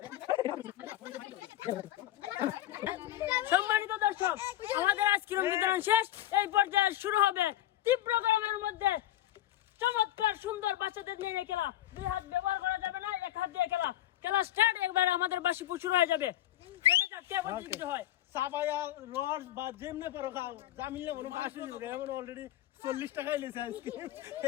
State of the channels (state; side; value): quieter; right; 13.7 dB